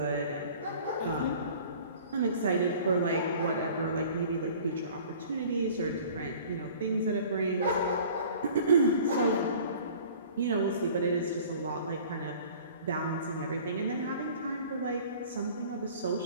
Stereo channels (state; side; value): inverted; both; correlation -0.47